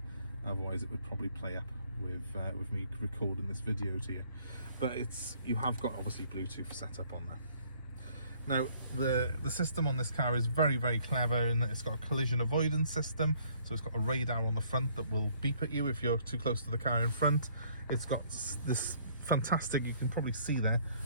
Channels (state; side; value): inverted; both; correlation -0.61